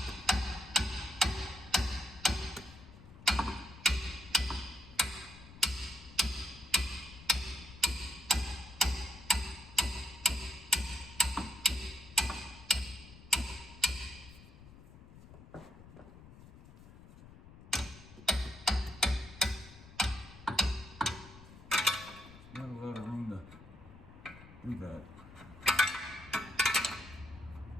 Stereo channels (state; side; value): noise; left; rumble, 19 dB below the sound